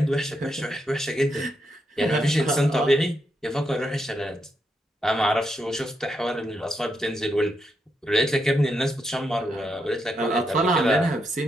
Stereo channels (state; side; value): normal; both; correlation 0.81